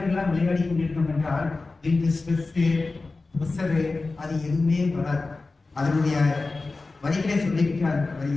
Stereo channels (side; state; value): right; quieter; 3.6 dB